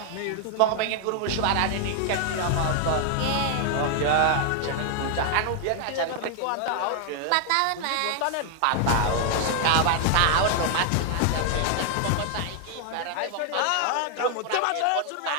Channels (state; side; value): different; both; correlation 0.00